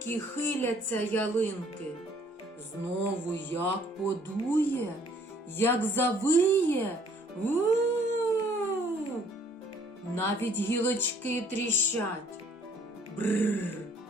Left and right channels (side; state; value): both; normal; correlation 0.60